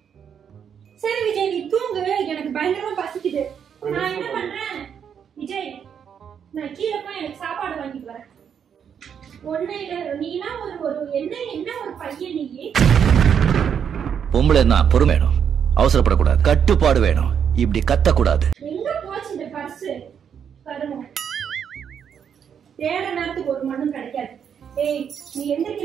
சரி விஜய் நீ தூங்கு, எனக்கு பயங்கரமா பசிக்குது. நான் என்ன பண்றேன் விஜய், நான் கீழே போய் எனக்கு சாப்பாடு வாங்கிட்டு வரேன். ஒண்ணு இல்ல, நீனா ஒரு என்ன ஒரு பையன் நீ. பொம்பளைன்னா பொறுமை வேணும், அவசரப்படக்கூடாது, கட்டுப்பாடு வேணும், இப்படி கத்தக்கூடாது. எங்க போச்சு இந்த பர்ஸ்? பாருங்க, தேட நேரத்துக்கு ஒரு மண்ணும் கிடைக்காது. ஏய் நீ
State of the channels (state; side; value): quieter; left; 7.9 dB